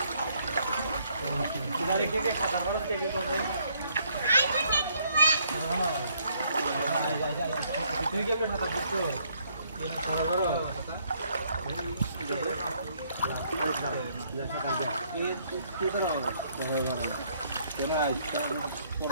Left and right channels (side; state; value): both; inverted; correlation -0.68